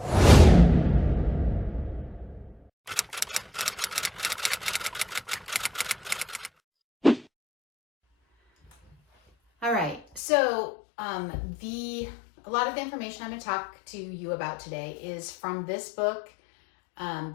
All right, so a lot of the information I'm going to talk to you about today is from this book,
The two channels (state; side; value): drops out; right; at 10.2 s